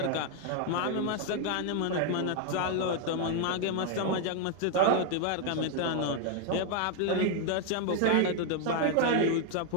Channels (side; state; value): both; different; correlation 0.00